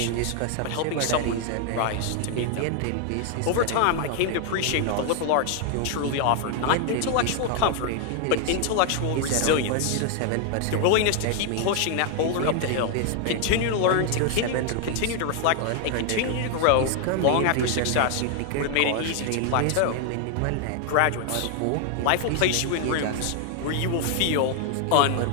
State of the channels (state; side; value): different; both; correlation 0.00